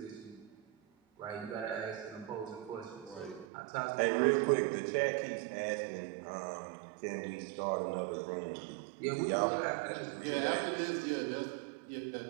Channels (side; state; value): left; drops out; at 3.5 s